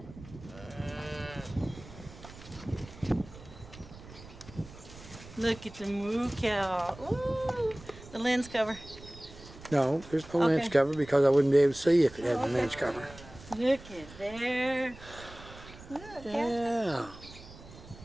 Look at the moo cow. Ooh, the lens cover. No, there's no lens cover because I wouldn't be able to see if it had a lens cover. Look at there. Look, Yeah.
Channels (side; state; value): right; noise; rumble, 17 dB below the sound